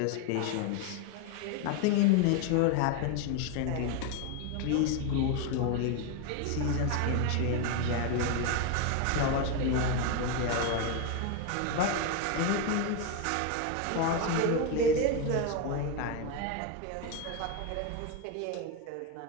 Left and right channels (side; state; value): both; different; correlation 0.02